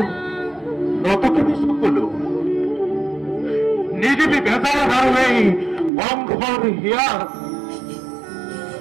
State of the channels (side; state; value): left; drops out; at 5.9 s